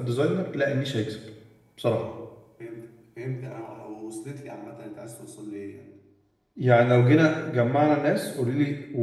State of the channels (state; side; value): identical; both; correlation 1.00